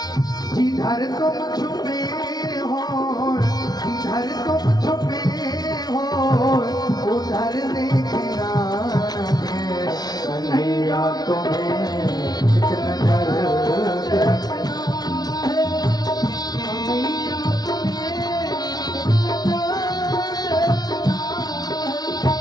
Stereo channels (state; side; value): late; right; 0.19 ms